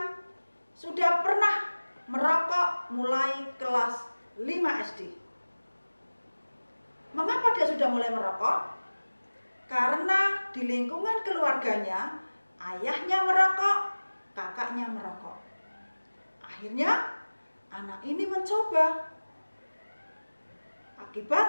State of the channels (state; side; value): inverted; both; correlation -1.00